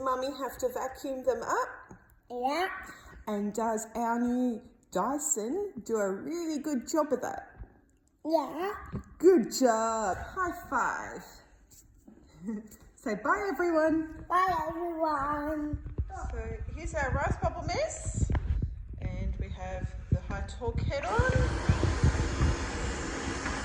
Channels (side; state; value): both; identical; correlation 1.00